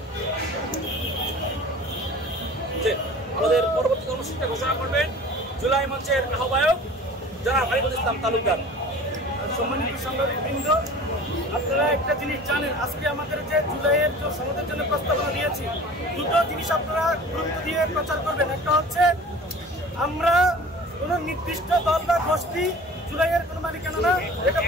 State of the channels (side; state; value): both; normal; correlation 0.42